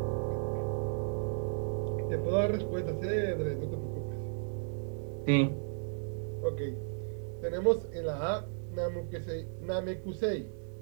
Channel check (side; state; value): left; silent; digital silence